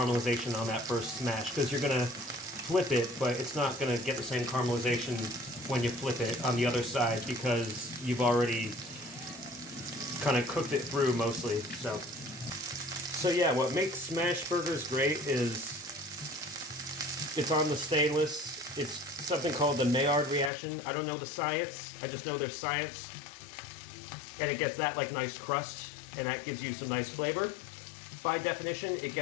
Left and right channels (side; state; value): right; drops out; at 20.5 s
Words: on that first smash, because you're gonna flip it, but it's not gonna get the same caramelization when you flip it on the other side because you've already kind of cooked it through mostly. So yeah, what makes smash burgers great is it's on the stainless. It's something called the Maillard reaction. I don't know the science. I just know there's science. And it gets that like nice crust, and that gives you some nice flavor. By definition, it